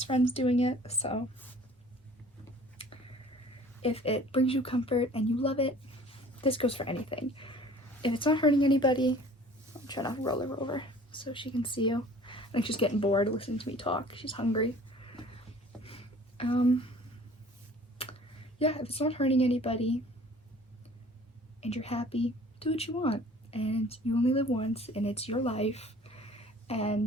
friends doing it, so if it brings you comfort and you love it, this goes for anything. If it's not hurting anybody, I'm trying to roll her over so she can see you. I think she's getting bored listening to me talk. She's hungry. Yeah, if it's not hurting anybody and you're happy, do what you want. And you only live once, and it's your life.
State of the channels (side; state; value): both; normal; correlation 0.49